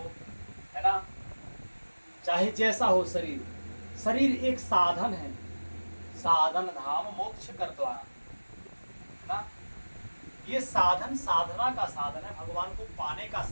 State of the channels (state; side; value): inverted; both; correlation -1.00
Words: है ना, चाहे जैसा हो शरीर, शरीर एक साधन है, साधन धाम मोक्ष कर द्वारा, है ना। ये साधन साधना का साधन है, भगवान को पाने का